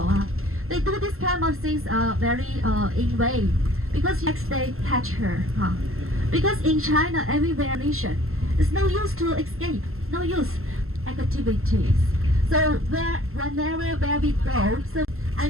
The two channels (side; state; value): left; late; 0.62 ms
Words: they do this kind of things very in way because next they catch her. Because in China, everywhere nation, it's no use to escape, no use activities. So where we go, so I